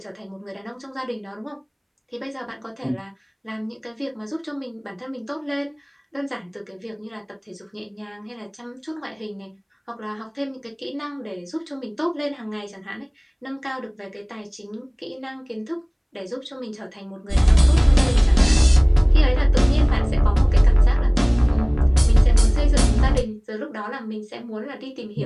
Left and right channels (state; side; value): identical; both; correlation 1.00